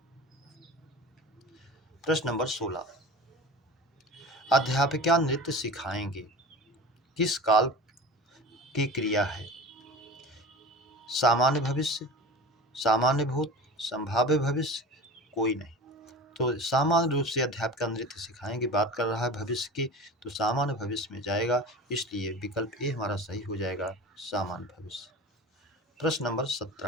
प्रश्न नंबर 16, अध्यापिका नृत्य सिखाएंगे किस काल की क्रिया है? सामान्य भविष्य, सामान्य भूत, संभाव्य भविष्य, कोई नहीं। तो सामान्य रूप से अध्यापिका नृत्य सिखाएंगे बात कर रहा है भविष्य की, तो सामान्य भविष्य में जाएगा, इसलिए विकल्प ए हमारा सही हो जाएगा, सामान्य भविष्य। प्रश्न नंबर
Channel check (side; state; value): both; normal; correlation 0.35